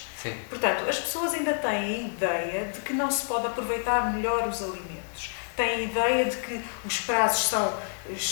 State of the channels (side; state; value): right; silent; digital silence